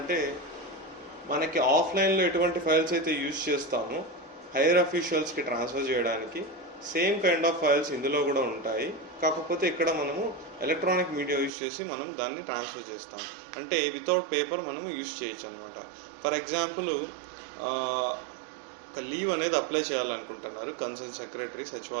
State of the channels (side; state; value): left; drops out; at 11.5 s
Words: మనకి ఆఫ్లైన్లో ఎటువంటి ఫైల్స్ అయితే యూజ్ చేస్తామో హైయర్ అఫీషియల్స్కి ట్రాన్స్ఫర్ చేయడానికి సేమ్ కైండ్ ఆఫ్ ఫైల్స్ ఇందులో కూడా ఉంటాయి. కాకపోతే ఇక్కడ మనము ఎలక్ట్రానిక్ మీడియా యూజ్ చేసి మనం దాన్ని ట్రాన్స్ఫర్ చేస్తాం. అంటే వితౌట్ పేపర్ మనం యూజ్ చేయొచ్చు అనమాట. ఫర్ ఎగ్జాంపుల్ ఒక లీవ్ అనేది అప్లై చేయాలనుకుంటున్నారు కన్సర్న్ సెక్రటరీ